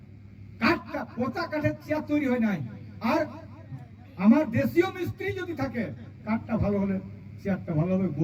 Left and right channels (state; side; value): identical; both; correlation 1.00